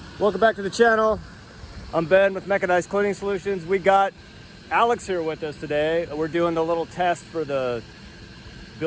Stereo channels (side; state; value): both; identical; correlation 1.00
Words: welcome back to the channel. I'm Ben with Mechanized Cleaning Solutions. We got Alex here with us today. We're doing the little test for the